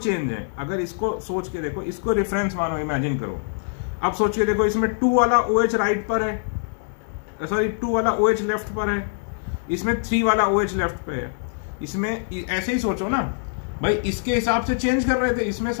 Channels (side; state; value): right; silent; digital silence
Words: हैं। अगर इसको सोच के देखो, इसको रेफरेंस मानो, इमेजिन करो। अब सोच के देखो, इसमें 2 वाला OH राइट पर है, सॉरी 2 वाला OH लेफ्ट पर है, इसमें 3 वाला OH लेफ्ट पे है। इसमें ऐसे ही सोचो ना भाई, इसके हिसाब से चेंज कर रहे थे, इसमें